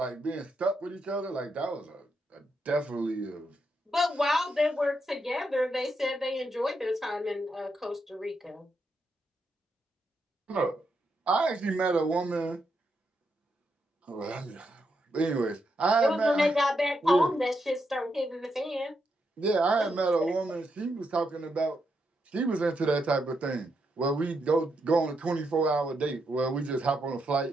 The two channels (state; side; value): normal; both; correlation 0.81